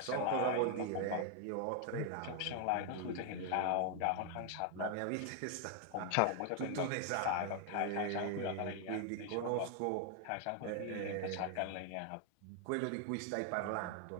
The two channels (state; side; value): different; both; correlation 0.00